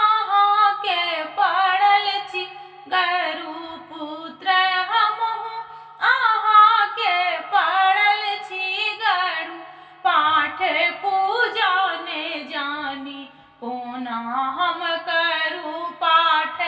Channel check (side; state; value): both; identical; correlation 1.00